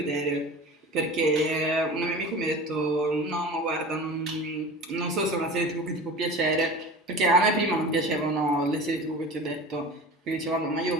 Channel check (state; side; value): normal; both; correlation 0.36